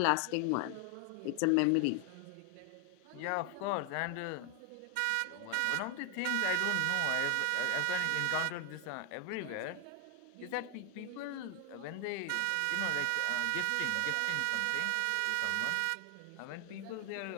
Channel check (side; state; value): both; different; correlation 0.00